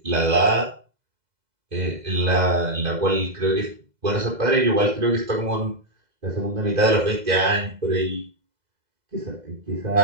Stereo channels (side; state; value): left; late; 2.0 ms